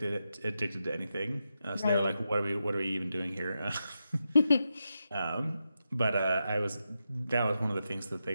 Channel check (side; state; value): both; inverted; correlation -0.88